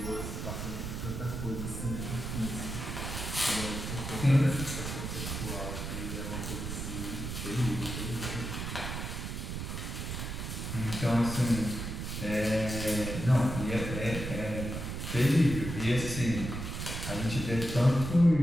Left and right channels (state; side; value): noise; right; rumble, 5 dB below the sound